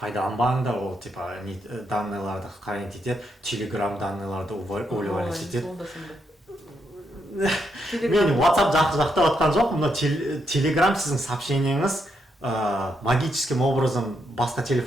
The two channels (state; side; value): normal; both; correlation 0.79